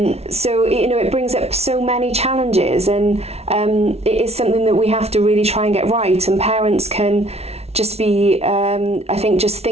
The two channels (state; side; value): late; left; 0.31 ms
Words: So it brings up so many challenges, and it is something that we have to really try and get right, and parents can just be I think just